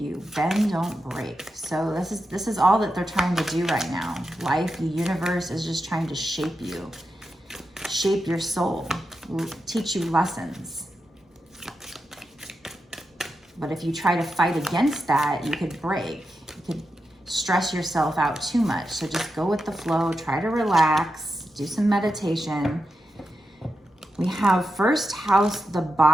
Bend, don't break. So this is all that they're trying to do right now. Life, the universe is just trying to shape you. Shape your soul. Teach you lessons. But if you try to fight against that, you could break. You could stress yourself out too much. So just go with the flow. Try to relax. Do some meditation. We have first house, the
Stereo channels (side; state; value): both; normal; correlation 0.88